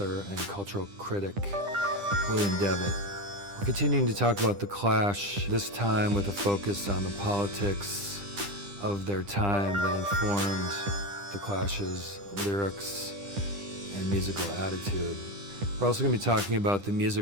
and cultural critic, William Devitt. We're continuing to talk about The Clash, this time with a focus on the politics of their time that informed The Clash's lyrics and musical attitude. We're also going to be talking about the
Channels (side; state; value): left; late; 10 ms